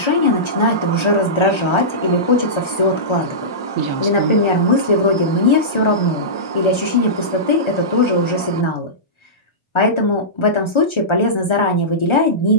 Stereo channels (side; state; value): right; late; 1.3 ms